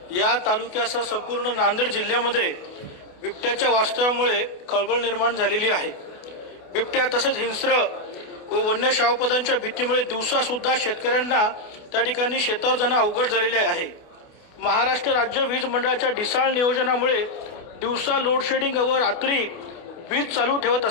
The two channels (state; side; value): late; right; 28 ms